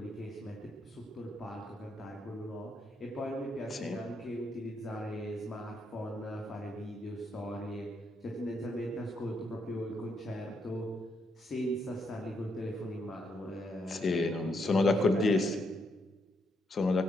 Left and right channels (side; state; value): both; normal; correlation 0.78